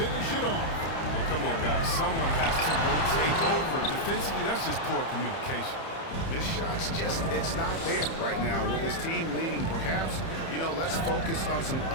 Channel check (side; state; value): right; late; 30 ms